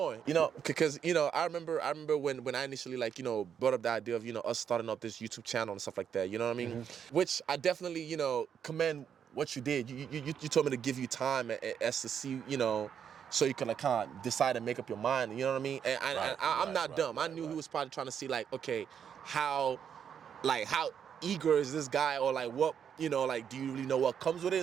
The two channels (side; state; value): left; quieter; 8.0 dB